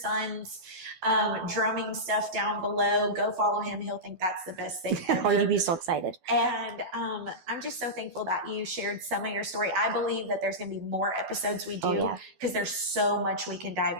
drumming stuff down below. Go follow him. He'll think that's the best thing ever. Oh, you'd be so excited. And I'm just so thankful that you shared some of your story. I believe that there's going to be more episodes we do because there's so much we can dive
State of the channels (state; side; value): late; left; 12 ms